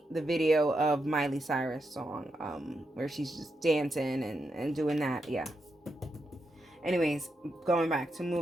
the video of Miley Cyrus song where she's just dancing and doing that. Yeah. Anyways, going back to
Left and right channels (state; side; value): normal; both; correlation 0.84